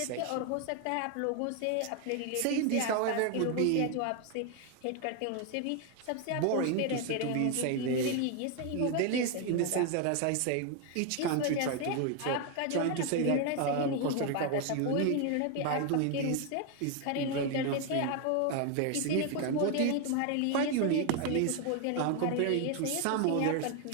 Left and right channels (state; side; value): different; both; correlation 0.01